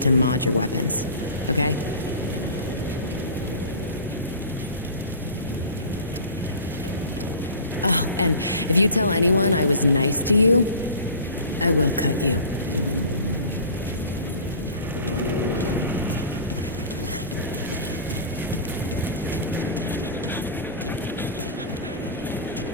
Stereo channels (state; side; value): inverted; both; correlation -0.38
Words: to mod your weapons. Okay? Oh, and if you tell anyone I was nice to you, I will cut you.